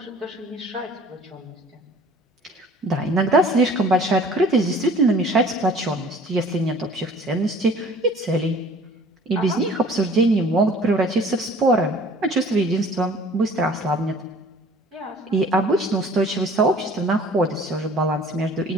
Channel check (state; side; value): normal; both; correlation 0.50